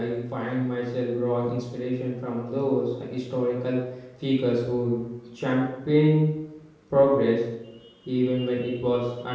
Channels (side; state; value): both; identical; correlation 1.00